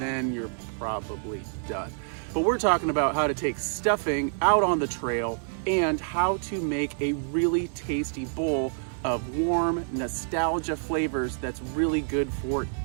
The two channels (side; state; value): left; silent; 60 dB below the other